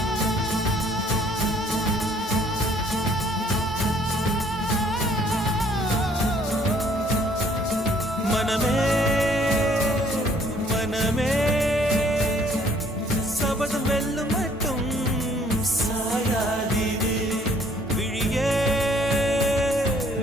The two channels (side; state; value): both; normal; correlation 0.60